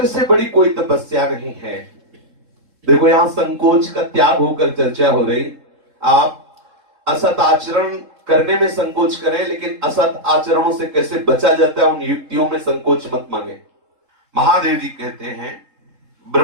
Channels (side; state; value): left; late; 3.7 ms